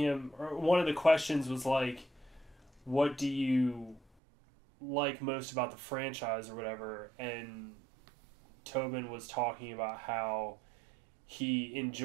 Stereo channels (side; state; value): left; drops out; at 4.0 s